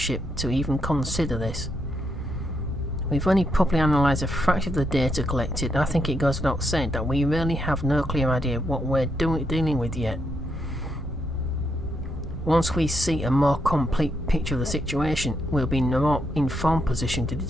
to even consider this? We've only properly analysed a fraction of the data collected, and I think it goes without saying that we really have no clear idea of what we're dealing with yet. Once we see a more complete picture of the situation, we'll be in a more informed position to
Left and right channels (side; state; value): both; normal; correlation 0.79